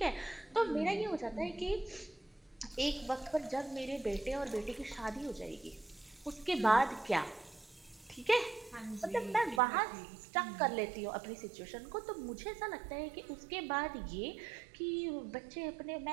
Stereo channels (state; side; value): drops out; left; at 9.6 s